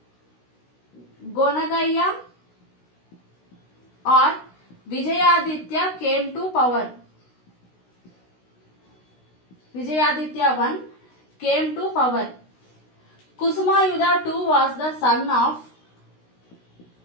Gonagaya or Vijayaditya came to power. Vijayaditya I came to power. Kusumayuddha II was the son of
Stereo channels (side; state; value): right; late; 16 ms